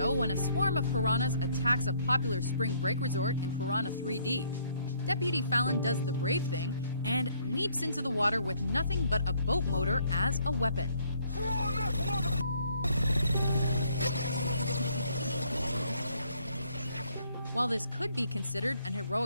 when a swarm of piranhas attacks a popular spring break resort in Piranha 3D, Deputy Fallon does the brave thing and leaps into the water with nothing but a boat motor as a weapon. While this could be considered an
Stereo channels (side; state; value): both; inverted; correlation -0.66